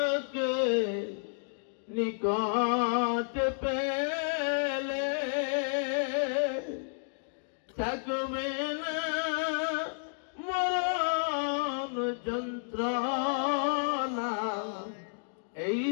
নিকট পেলে থাকবে না মরণ যন্ত্রণা এই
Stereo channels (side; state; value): right; silent; digital silence